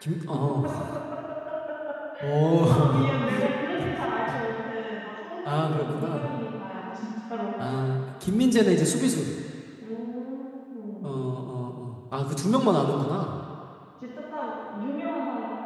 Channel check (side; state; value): both; identical; correlation 1.00